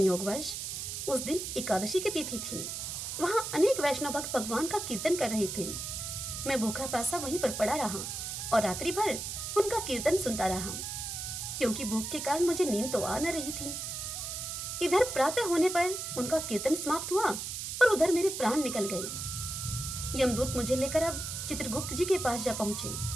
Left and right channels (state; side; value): noise; right; hiss, 5 dB below the sound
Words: उस दिन एकादशी की तिथि थी। वहां अनेक वैष्णव भक्त भगवान का कीर्तन कर रहे थे। मैं भूखा प्यासा वहीं पर पड़ा रहा और रात्रि भर उनका कीर्तन सुनता रहा, क्योंकि भूख के कारण मुझे नींद तो आ न रही थी। इधर प्रातः होने पर उनका कीर्तन समाप्त हुआ और उधर मेरे प्राण निकल गए। यमदूत मुझे लेकर अब चित्रगुप्त जी के पास जा पहुंचे।